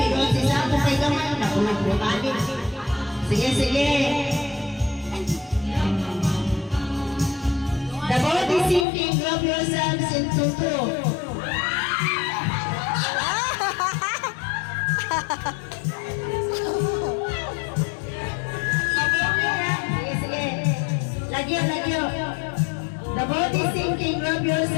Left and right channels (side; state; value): right; drops out; at 8.8 s